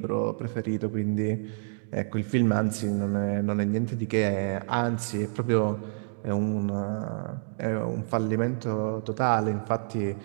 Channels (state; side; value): silent; left; digital silence